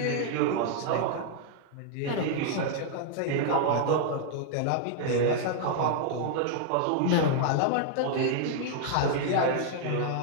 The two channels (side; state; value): both; different; correlation -0.01